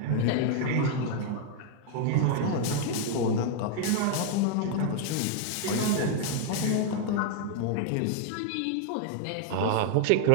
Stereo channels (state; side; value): different; both; correlation 0.00